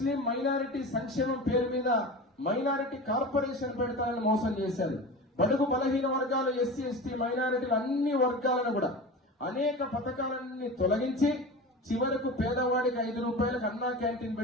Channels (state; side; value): normal; both; correlation 0.31